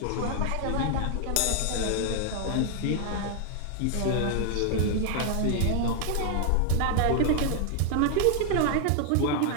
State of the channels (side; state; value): both; different; correlation 0.00